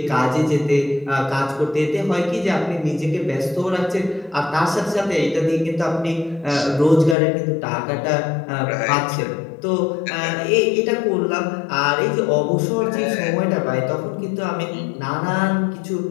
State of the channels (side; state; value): right; drops out; at 7.2 s